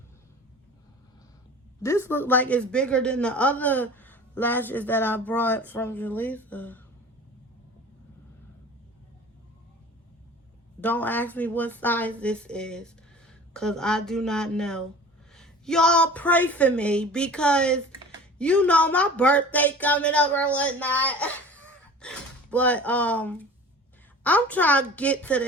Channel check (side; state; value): both; normal; correlation 0.41